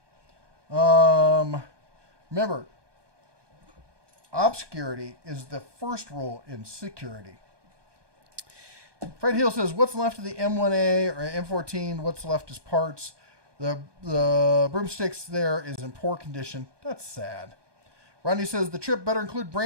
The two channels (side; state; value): left; late; 1.2 ms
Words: Remember, obscurity is the first rule in security. Fred Hill says, what's left of the M1A or M14? What's left is parts. The broomsticks there is in poor condition. That's sad. Rodney says, the trip better include